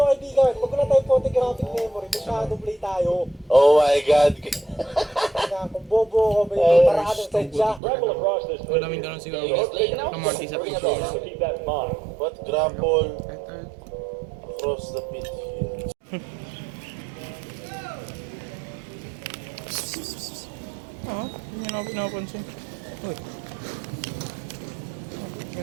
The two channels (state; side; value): drops out; left; at 7.8 s